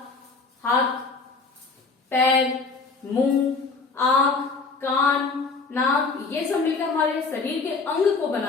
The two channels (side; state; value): right; quieter; 4.3 dB